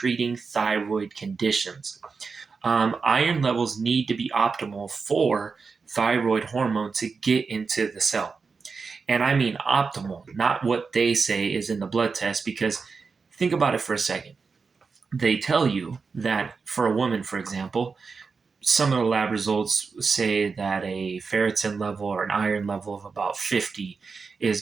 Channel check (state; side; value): quieter; left; 4.9 dB